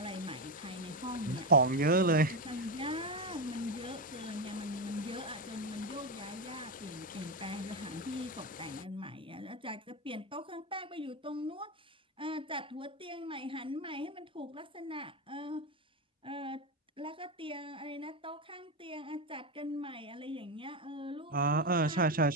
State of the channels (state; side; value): normal; both; correlation 0.11